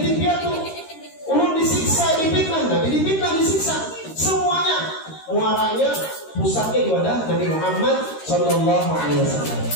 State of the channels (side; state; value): right; late; 13 ms